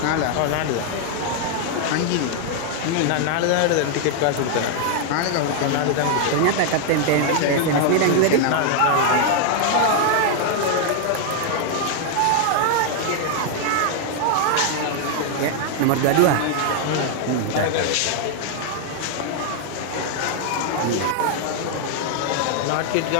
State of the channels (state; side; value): different; both; correlation 0.00